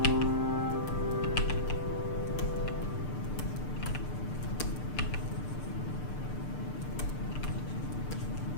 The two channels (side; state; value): right; late; 6.7 ms